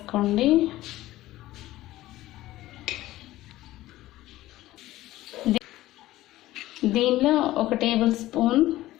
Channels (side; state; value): right; quieter; 16.1 dB